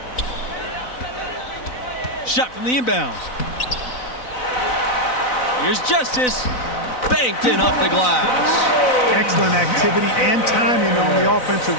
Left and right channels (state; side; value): late; right; 4.0 ms